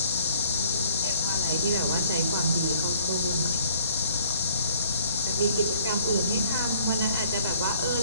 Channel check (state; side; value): inverted; both; correlation -0.59